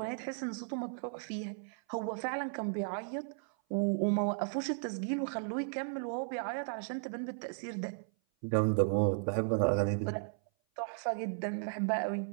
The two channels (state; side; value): silent; left; 54 dB below the other